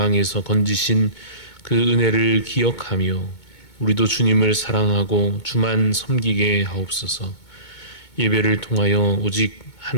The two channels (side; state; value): right; late; 2.2 ms